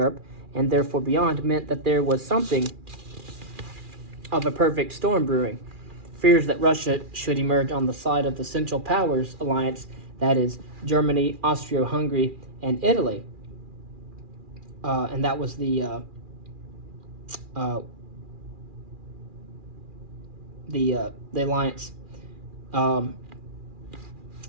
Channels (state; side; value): late; left; 2.4 ms